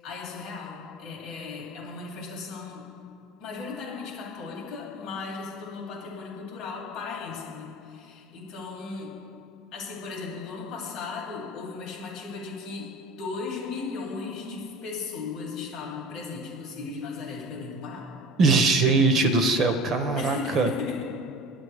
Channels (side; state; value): both; normal; correlation 0.39